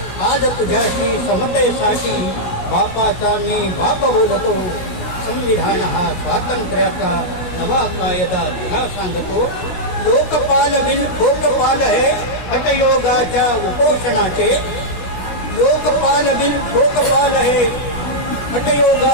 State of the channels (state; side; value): late; right; 17 ms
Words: आज तुझ्याशी समतेसाठी बापाचा मी बाप बोलतो. संविधान हा स्वातंत्र्याचा नवा कायदा तुला सांगतो. लोकपाल बिन ठोकपाल हे हटयोगाच्या उपोषणाचे. लोकपाल बिन ठोकपाल हे